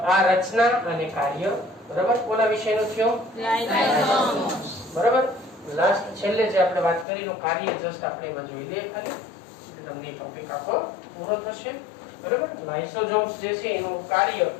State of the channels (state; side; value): drops out; right; at 7.1 s